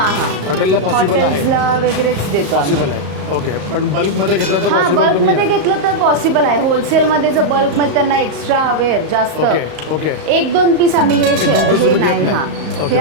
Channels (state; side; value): late; left; 35 ms